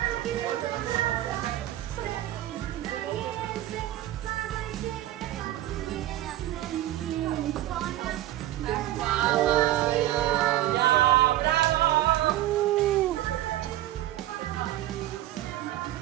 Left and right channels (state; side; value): quieter; left; 14.3 dB